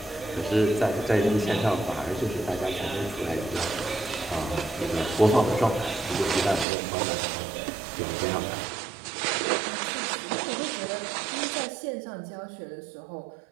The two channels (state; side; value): drops out; left; at 6.7 s